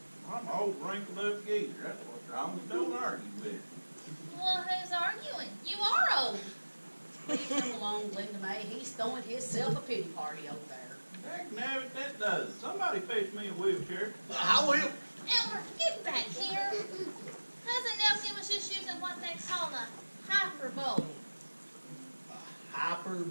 I'm an old wrinkled up geezer. That's what's wrong. Don't argue with it. Well, who's arguing? You are old. Leave him alone, Linda May. He's throwing himself a pity party over there. Heck, nabbit, that does. Somebody fetch me a wheelchair. I will. Elmer, get back here. Cousin Elkin was just using what they call a hyperbole.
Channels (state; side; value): inverted; both; correlation -1.00